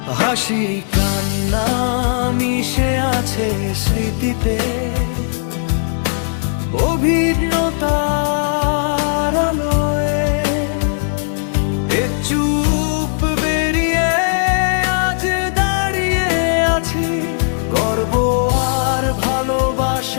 হাসি কান্না মিশে আছে স্মৃতিতে, অভিজ্ঞতার আলোয় এ চুপ বেরিয়ে আজ দাঁড়িয়ে আছি, গর্ব আর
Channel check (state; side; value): silent; right; digital silence